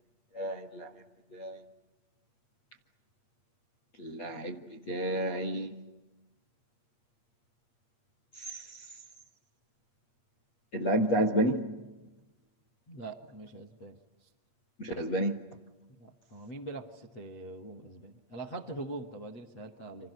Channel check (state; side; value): late; right; 8.5 ms